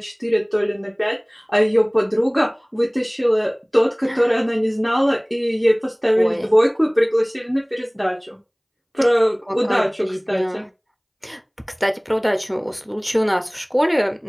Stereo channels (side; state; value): both; identical; correlation 1.00